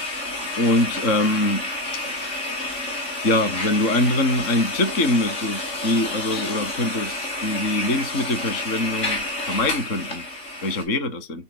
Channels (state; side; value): late; right; 3.5 ms